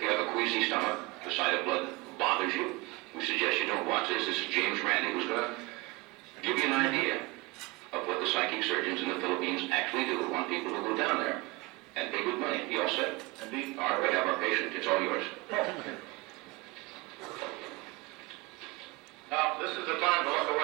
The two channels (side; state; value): left; quieter; 24.0 dB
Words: have a queasy stomach, the sight of blood bothers you, we suggest you don't watch this. This is James Randi, who's going to give you an idea of what the psychic surgeons in the Philippines actually do. We want people to go down there and pay good money. You all set? Indeed. All right, we have our patient. It's all yours. Now, this is the time to look